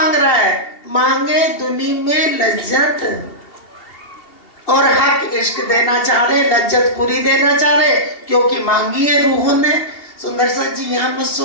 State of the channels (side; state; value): right; late; 2.8 ms